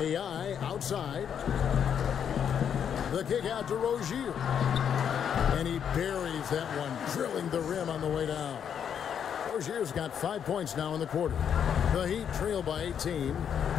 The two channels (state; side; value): quieter; right; 8.2 dB